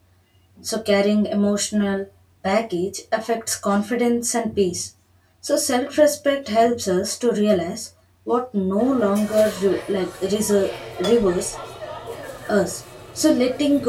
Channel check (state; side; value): identical; both; correlation 1.00